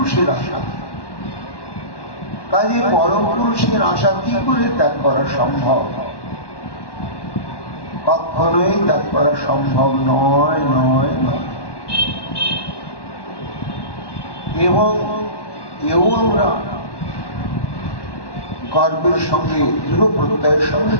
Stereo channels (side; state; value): right; late; 1.1 ms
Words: আশা। কাজে পরম পুরুষের আশা কি করে ত্যাগ করা সম্ভব? কখনোই ত্যাগ করা সম্ভব নয়, নয়, নয়। এবং এও আমরা গর্বের সঙ্গে দৃঢ় প্রত্যয়ের সঙ্গে